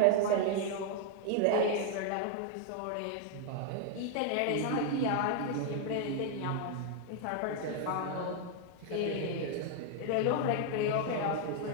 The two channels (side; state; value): both; different; correlation 0.00